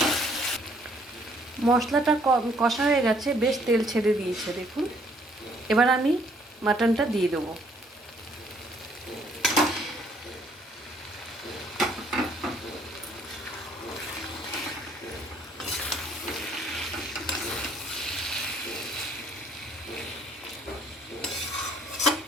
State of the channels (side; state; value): both; normal; correlation 0.64